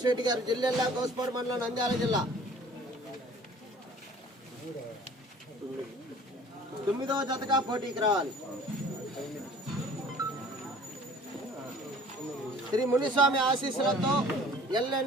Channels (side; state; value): both; normal; correlation 0.49